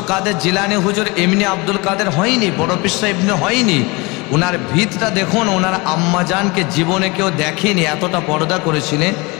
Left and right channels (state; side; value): quieter; right; 25.9 dB